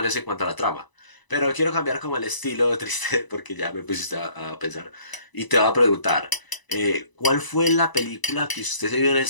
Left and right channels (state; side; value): late; right; 1.0 ms